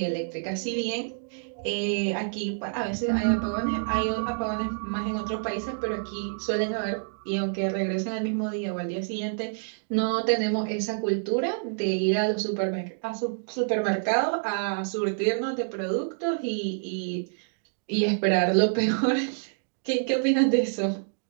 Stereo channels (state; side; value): silent; left; digital silence